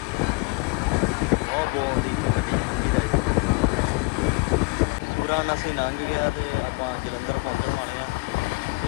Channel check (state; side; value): quieter; right; 29.8 dB